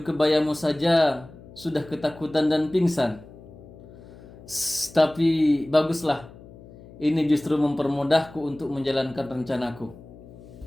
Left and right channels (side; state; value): left; noise; hum, 19 dB below the sound